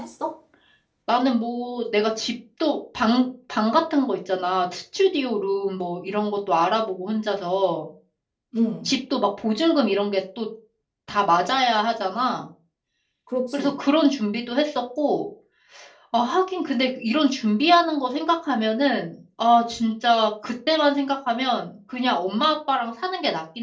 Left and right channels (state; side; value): identical; both; correlation 1.00